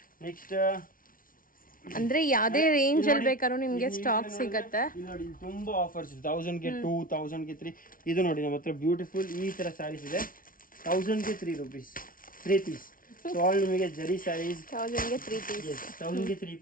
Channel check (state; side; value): late; right; 0.40 ms